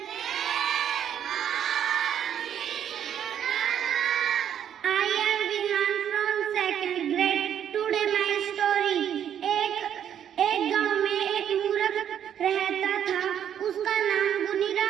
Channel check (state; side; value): quieter; left; 9.5 dB